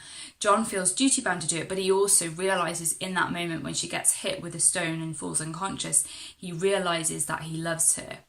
John feels duty bound to do it, but he also realises in that moment when she gets hit with a stone and falls unconscious, he realises that he loves her.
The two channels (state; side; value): identical; both; correlation 1.00